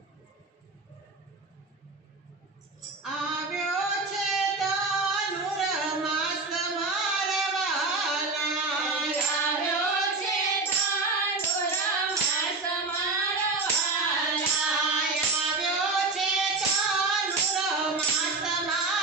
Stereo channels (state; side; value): quieter; left; 3.7 dB